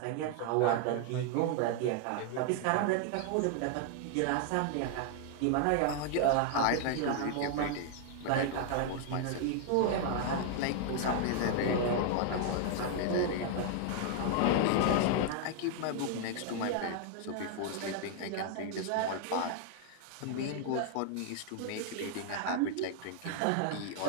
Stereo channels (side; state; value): both; different; correlation 0.00